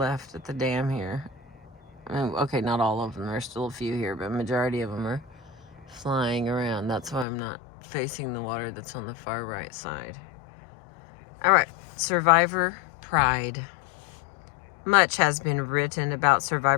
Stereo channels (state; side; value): drops out; right; at 7.2 s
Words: at the dam here. Okay, not all of them. There's still a few here, but majority of them are flying around. That's why I'm not facing the water that's on the far right side. All right, Survivor Pride. Much has been written about